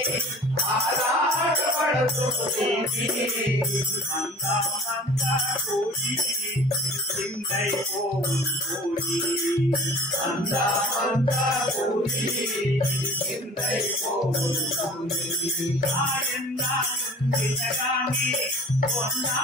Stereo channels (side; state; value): both; normal; correlation 0.46